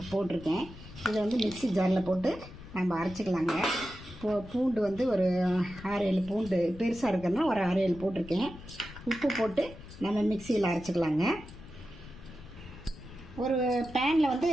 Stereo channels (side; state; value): left; noise; rumble, 16 dB below the sound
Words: போட்டிருக்கேன். இதை மிக்ஸி ஜாரில் போட்டு நம்ம அரைச்சிக்கலாங்க. பூண்டு ஒரு 6-7 பூண்டு பெருசாக இருக்கிறதுனா ஒரு 6-7 போட்டிருக்கேன். உப்பு போட்டு நம்ம மிக்சியில் அரைச்சிக்கலாங்க. ஒரு பேனில்